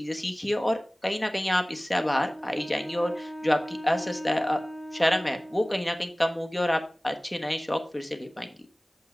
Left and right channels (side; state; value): both; normal; correlation 0.98